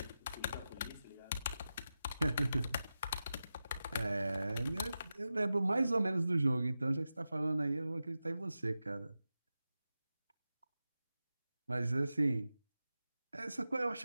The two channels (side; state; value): both; inverted; correlation -0.92